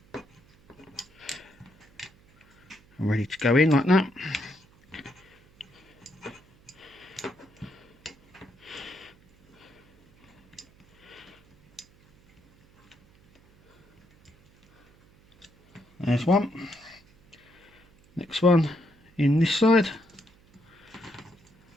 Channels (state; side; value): noise; right; hum, 29 dB below the sound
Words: And ready to go in like that. There's one. Next one in this side.